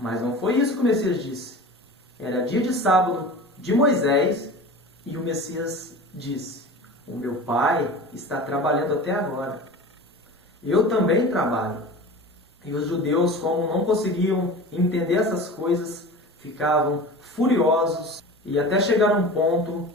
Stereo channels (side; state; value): both; normal; correlation 0.35